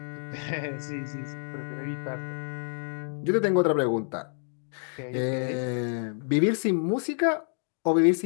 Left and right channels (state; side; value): silent; right; 59 dB below the other